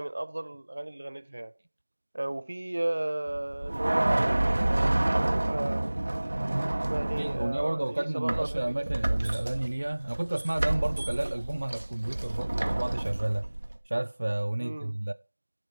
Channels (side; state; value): both; inverted; correlation -1.00